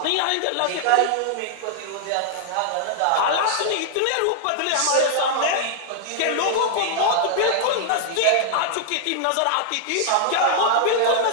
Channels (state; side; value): different; both; correlation -0.01